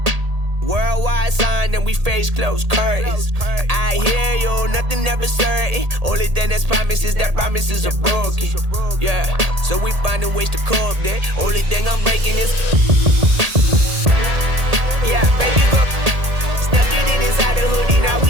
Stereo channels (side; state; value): left; late; 1.8 ms